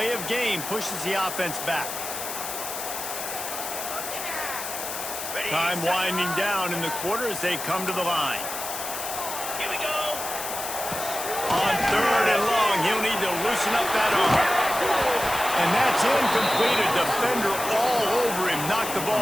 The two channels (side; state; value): left; noise; hiss, 6 dB below the sound